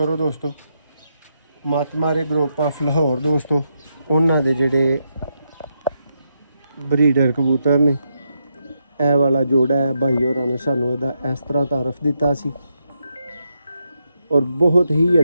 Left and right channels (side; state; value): both; inverted; correlation -0.82